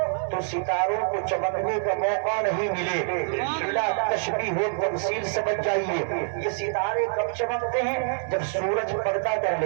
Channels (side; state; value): left; silent; digital silence